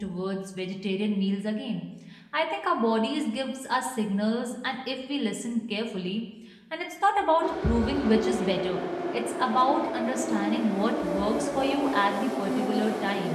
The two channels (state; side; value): identical; both; correlation 1.00